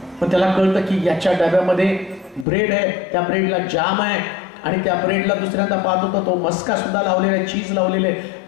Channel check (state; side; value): drops out; right; at 2.5 s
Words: पण त्याला कळतं की याच्या डब्यामध्ये ब्रेड आहे, त्या ब्रेडला जाम आहे, आणि त्या ब्रेडला दुसऱ्यांदा पाहत होता तो मस्का सुद्धा लावलेला आहे, चीज लावलेले आहे.